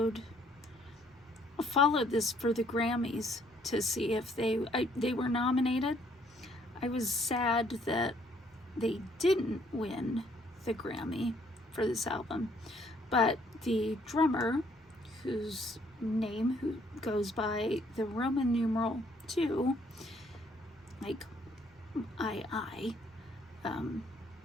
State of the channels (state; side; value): normal; both; correlation 0.66